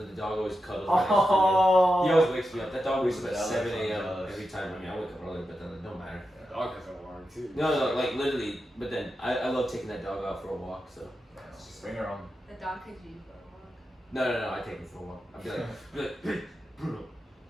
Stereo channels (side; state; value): both; normal; correlation 0.89